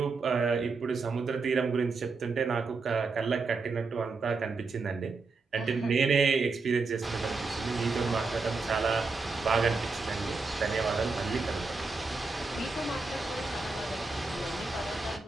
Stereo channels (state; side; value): quieter; left; 4.1 dB